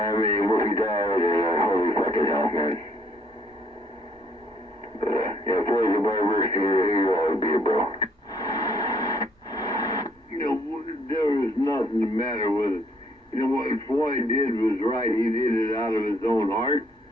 Wolfie died, and holy fucking hell, man. But, yeah, Floyd's a barber, here you are, be a bro. You know, there was nothing the matter with it. You know, what Floyd did was right. He did it out of his own heart.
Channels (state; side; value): normal; both; correlation 0.66